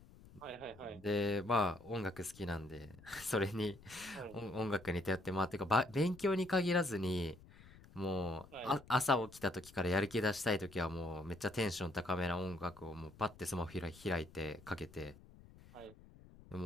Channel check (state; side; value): noise; left; rumble, 21 dB below the sound